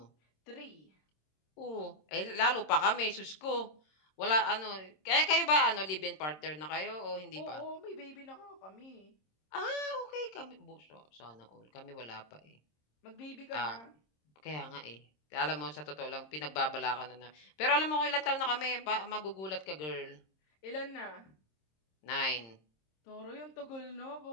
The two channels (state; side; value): late; right; 26 ms